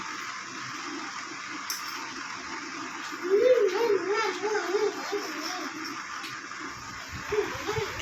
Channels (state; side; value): identical; both; correlation 1.00